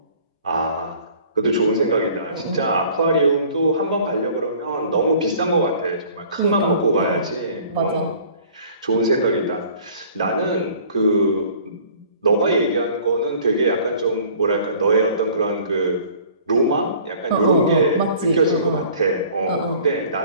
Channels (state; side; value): inverted; both; correlation -0.51